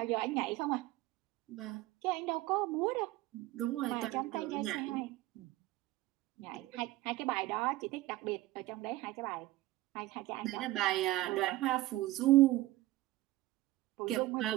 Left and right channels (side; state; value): left; quieter; 17.4 dB